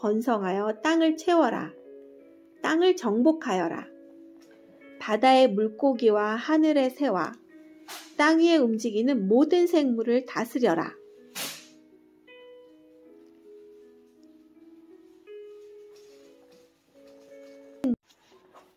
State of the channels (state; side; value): identical; both; correlation 1.00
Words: 땅을 채워라. 땅을 정복하여라. 바다의 물고기와 하늘의 새와 땅 위에 움직이는 모든 생물을 다스려라.